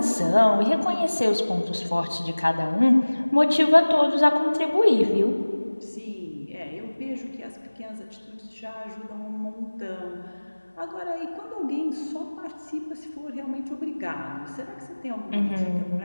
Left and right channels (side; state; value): both; inverted; correlation -1.00